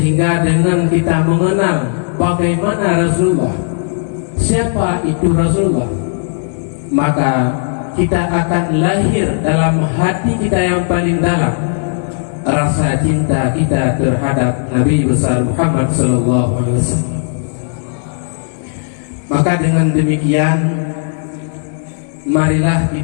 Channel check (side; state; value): right; silent; digital silence